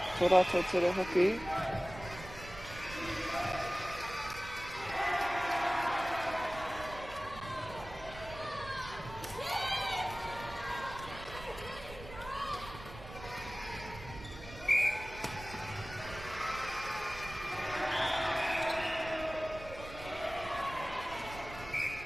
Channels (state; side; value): noise; right; rumble, 14 dB below the sound